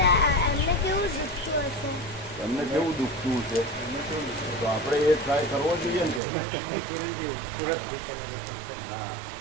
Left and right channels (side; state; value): left; drops out; at 6.2 s